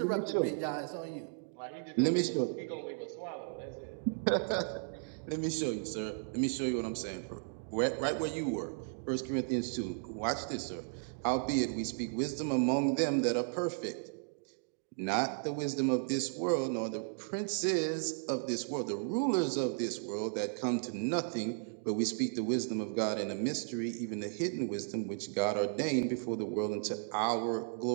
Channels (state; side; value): silent; left; digital silence